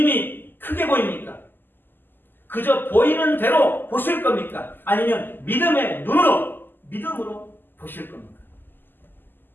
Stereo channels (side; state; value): right; late; 0.093 ms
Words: 크게 보입니까? 그저 보이는 대로 보실 겁니까? 아니면 믿음의 눈으로, 믿음으로 보실 겁니까?